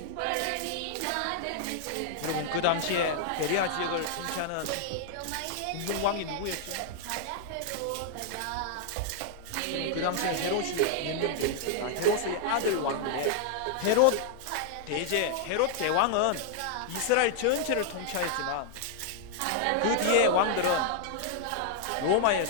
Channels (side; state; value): both; different; correlation -0.01